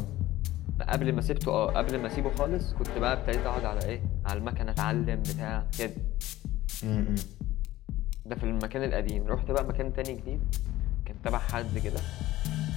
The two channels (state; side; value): quieter; right; 16.0 dB